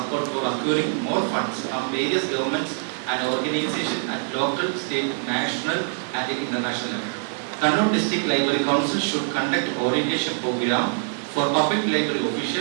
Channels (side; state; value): left; silent; 61 dB below the other